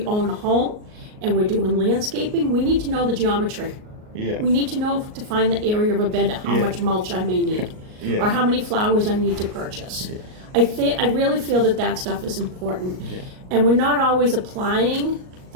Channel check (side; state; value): left; late; 38 ms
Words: own a home and we're doing landscaping, we need to know the geometry. We need to know to find the area of a bed, how much mulch I may need, or how many flowers I need to purchase. I really feel that stuff is important. And we're not always applying